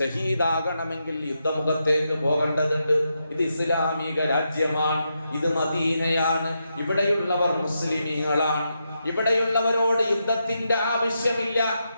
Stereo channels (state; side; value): inverted; both; correlation -0.84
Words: യുദ്ധമുഖത്തേക്ക് പോകേണ്ടതുണ്ട്. ഇത് ഇസ്ലാമിക രാജ്യമാണ്, ഇത് മദീനയാണ്, ഇവിടെയുള്ളവർ മുസ്ലിമീങ്ങളാണ്. ഇവിടെയുള്ളവരോട് യുദ്ധത്തിന്റെ ആവശ്യമില്ല.